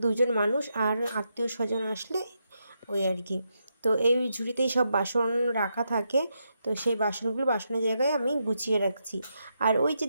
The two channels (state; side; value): inverted; both; correlation -0.83